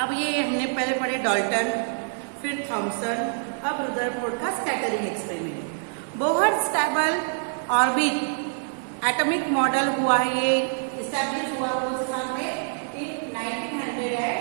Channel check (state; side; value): silent; left; digital silence